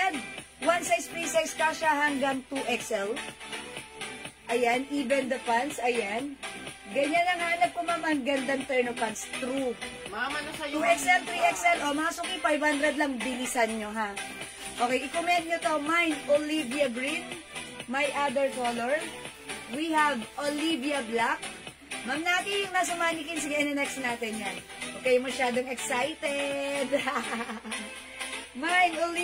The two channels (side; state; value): both; identical; correlation 1.00